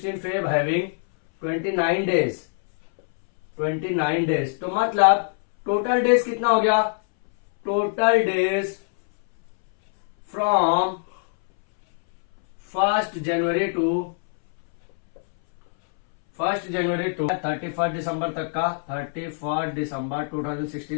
Feb having 29 days, 29 days. तो मतलब टोटल डेज कितना हो गया, total days from 1 January to 31 December तक का, 31 दिसंबर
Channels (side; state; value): right; silent; 63 dB below the other